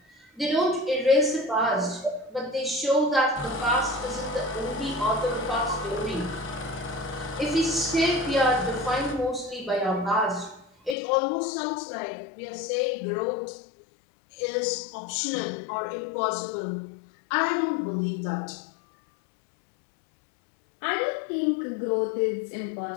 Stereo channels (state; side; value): drops out; right; at 11.0 s